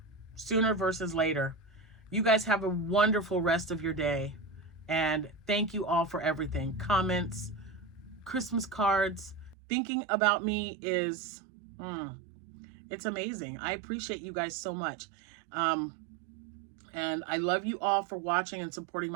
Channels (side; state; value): left; drops out; at 9.6 s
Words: Sooner versus later. You guys have a wonderful rest of your day. And thank you all for everything. Comments, Christmas cards. Thinking about me is... it's amazing. I appreciate you guys so much. And I love you all for watching and supporting